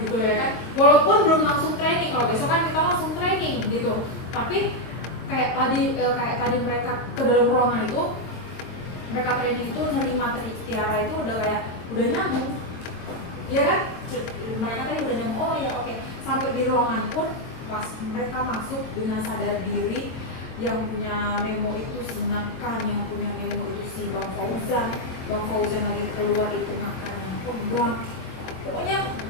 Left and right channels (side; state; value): right; late; 23 ms